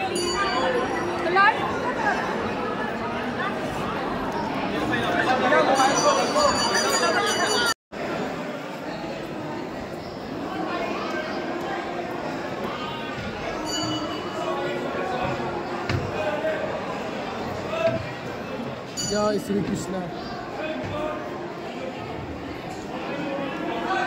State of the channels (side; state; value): both; identical; correlation 1.00